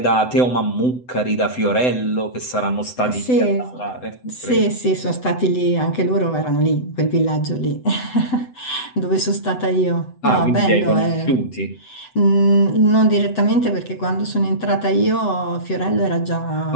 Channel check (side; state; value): right; late; 7.9 ms